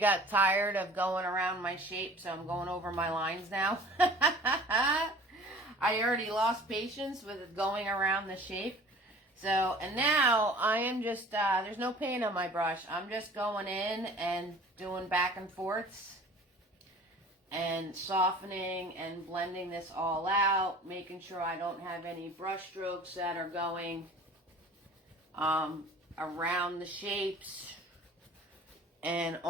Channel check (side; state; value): both; normal; correlation 0.46